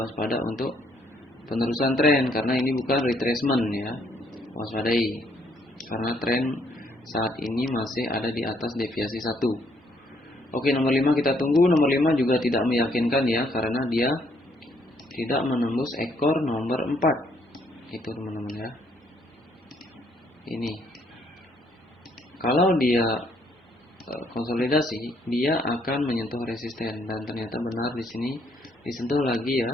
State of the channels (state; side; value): normal; both; correlation 0.69